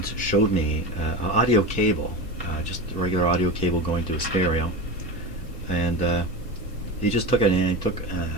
showed me an audio cable, just a regular audio cable going to a stereo, and he just took it and he took, I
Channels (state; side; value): normal; both; correlation 0.25